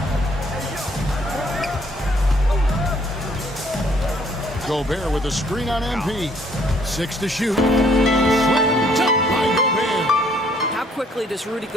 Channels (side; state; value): both; normal; correlation 0.64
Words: Gobert with a screen on MP. 6 to shoot. Slammed up by Gobert. How quickly does Rudy